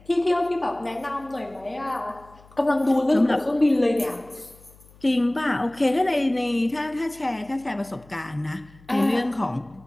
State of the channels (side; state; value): left; noise; hum, 25 dB below the sound